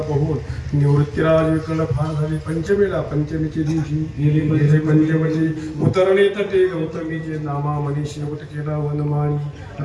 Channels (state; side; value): identical; both; correlation 1.00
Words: बघून निवृत्तीराज विकल फार झाले पंचमीच्या दिवशी गेले पंचमीची उतरले तटे गौतमीचे नामा मनी शेवट केला वनमाळी